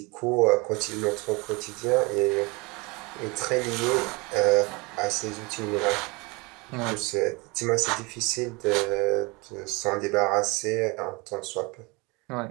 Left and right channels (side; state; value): left; quieter; 26.7 dB